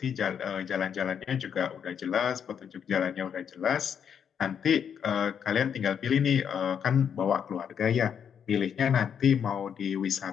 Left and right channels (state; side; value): quieter; right; 7.9 dB